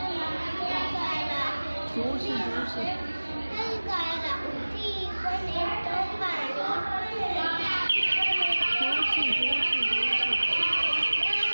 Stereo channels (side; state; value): both; inverted; correlation -1.00